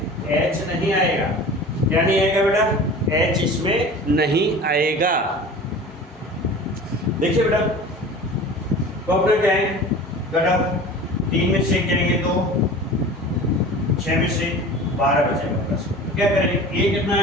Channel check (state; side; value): normal; both; correlation 0.39